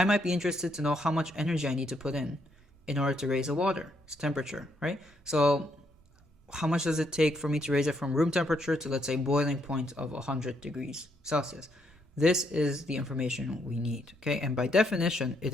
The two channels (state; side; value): normal; both; correlation 0.74